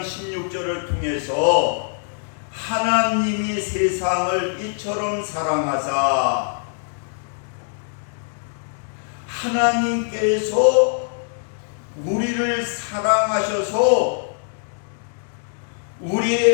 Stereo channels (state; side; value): silent; right; digital silence